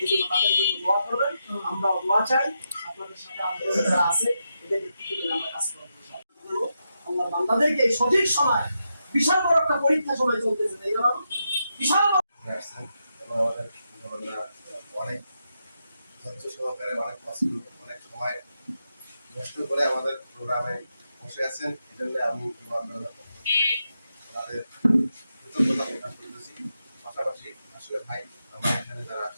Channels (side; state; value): both; inverted; correlation -0.85